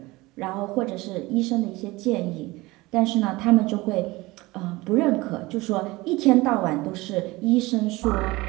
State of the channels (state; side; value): quieter; left; 21.1 dB